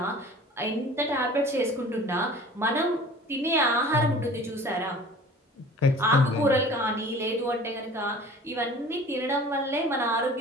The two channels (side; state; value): both; normal; correlation 0.44